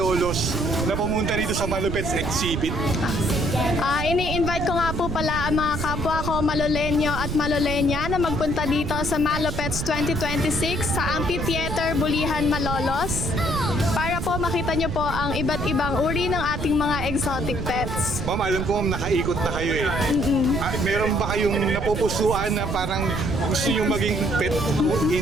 na pumunta dito sa Malupets Exhibit? Ini-invite ko nga po pala ang mga kapwa ko Malolenyo at Malolenya na magpunta dito sa Malupets 2026 sa Amphitheater Bulihan, Malolos para po makita nyo po ang iba't ibang uri ng ating mga exotic pets. Ma'am, alam ko ma'am, nakaikot na kayo eh. Meron ba kayong napupusuan na parang gusto nyo maging pet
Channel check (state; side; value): noise; right; rumble, 4 dB below the sound